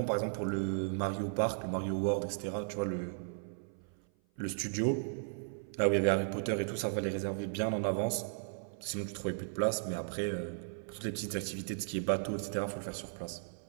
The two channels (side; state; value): left; silent; 54 dB below the other